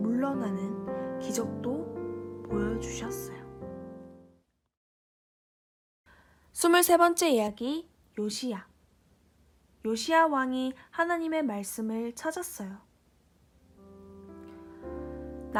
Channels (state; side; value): identical; both; correlation 1.00